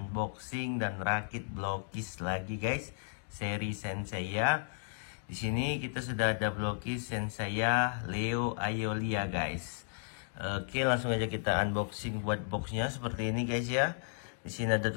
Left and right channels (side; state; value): right; silent; digital silence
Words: dan rakit blokis lagi guys. Seri Senseiya. Di sini kita sudah ada blokis Senseiya Leo Aeolia guys. Oke, langsung aja kita unboxing buat boxnya seperti ini guys ya. Di sini ada